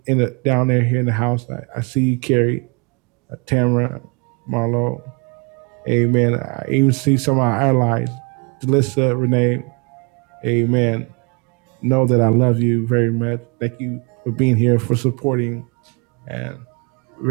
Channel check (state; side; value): quieter; left; 32.1 dB